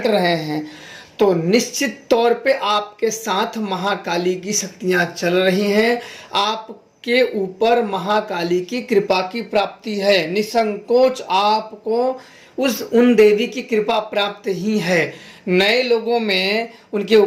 रहे हैं तो निश्चित तौर पे आपके साथ महाकाली की शक्तियां चल रही हैं। आपके ऊपर महाकाली की कृपा की प्राप्ति है। निसंकोच आपको उन देवी की कृपा प्राप्त ही है। नए लोगों में उनके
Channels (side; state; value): both; identical; correlation 1.00